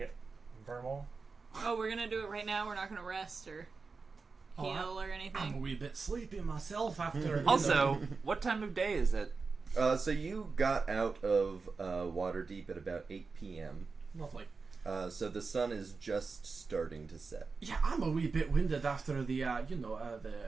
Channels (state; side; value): quieter; left; 4.5 dB